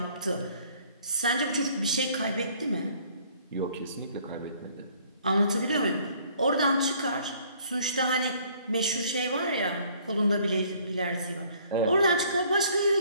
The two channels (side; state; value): both; inverted; correlation -0.59